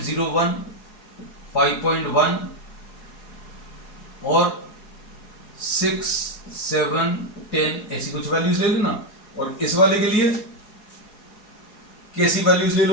5.1 और 6, 7, 10 ऐसी कुछ वैल्यूज ले लेना। और इस वाले के लिए कैसी वैल्यूज ले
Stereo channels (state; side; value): late; right; 4.7 ms